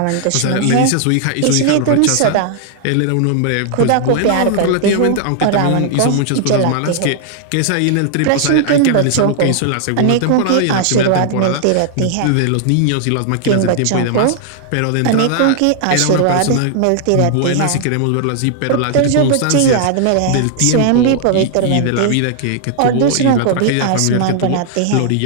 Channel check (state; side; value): different; both; correlation 0.00